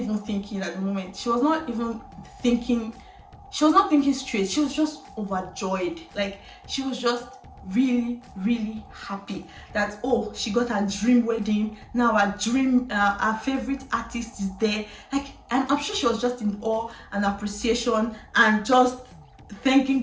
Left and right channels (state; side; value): identical; both; correlation 1.00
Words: thinking at the moment. She was not thinking straight. She was just overjoyed. Like, she was just really, really happy that, oh, she got her dream wedding. Now her favorite artist is there. Like, I'm sure she was just in awe and appreciation and just thanking